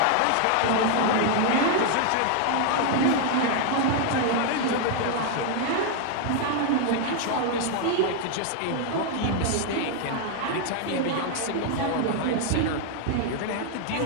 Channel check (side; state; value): both; different; correlation 0.00